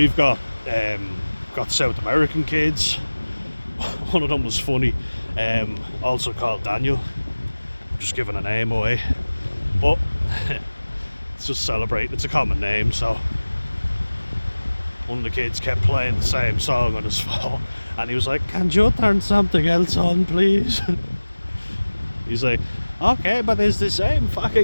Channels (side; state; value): both; inverted; correlation -1.00